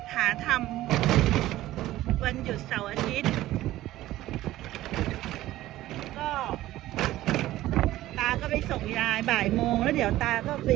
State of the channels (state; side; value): quieter; left; 15.4 dB